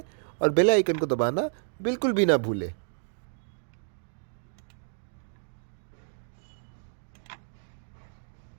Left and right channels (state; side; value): silent; left; digital silence